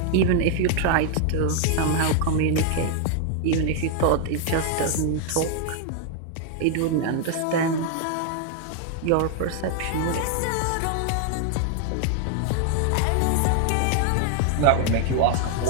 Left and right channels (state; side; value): different; both; correlation 0.00